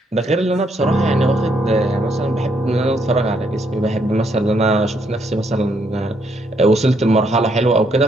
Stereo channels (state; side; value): normal; both; correlation 0.73